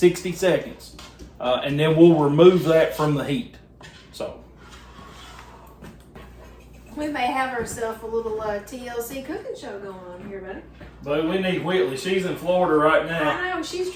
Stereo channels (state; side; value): identical; both; correlation 1.00